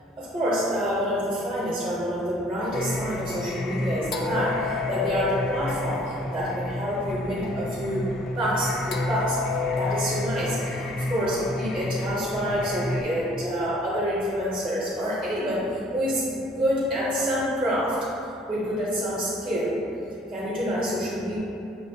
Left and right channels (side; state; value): both; normal; correlation 0.56